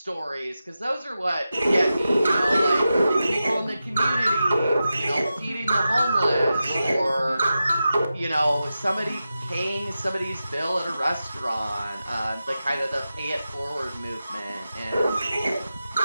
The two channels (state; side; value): inverted; both; correlation -0.92